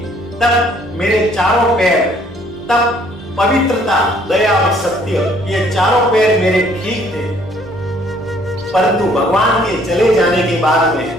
तब मेरे चारों पैर, तब पवित्रता, दया और सत्य, ये चारों पैर मेरे ठीक थे। परंतु भगवान के चले जाने के बाद में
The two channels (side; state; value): both; normal; correlation 0.62